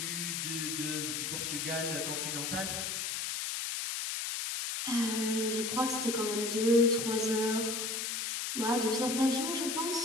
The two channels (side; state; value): left; noise; hiss, 2 dB below the sound